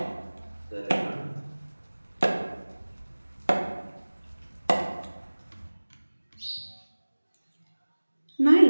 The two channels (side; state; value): both; inverted; correlation -1.00